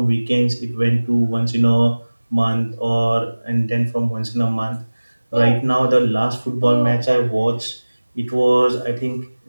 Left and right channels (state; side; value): inverted; both; correlation -1.00